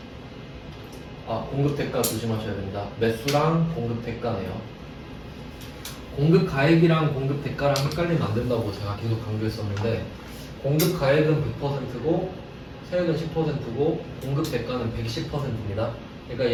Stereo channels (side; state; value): both; identical; correlation 1.00